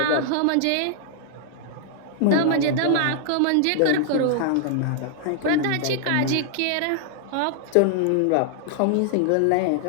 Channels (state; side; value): different; both; correlation -0.01